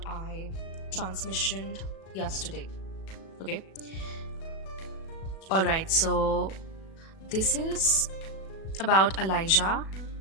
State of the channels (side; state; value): right; late; 37 ms